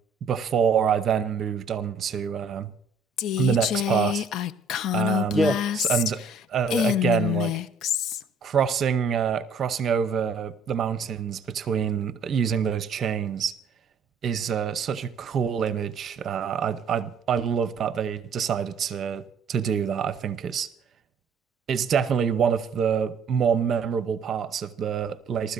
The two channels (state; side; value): quieter; left; 4.0 dB